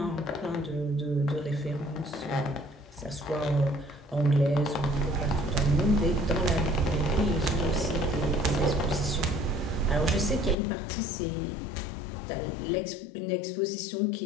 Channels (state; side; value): drops out; right; at 10.6 s